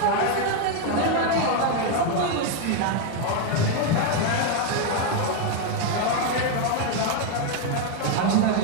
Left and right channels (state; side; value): different; both; correlation 0.01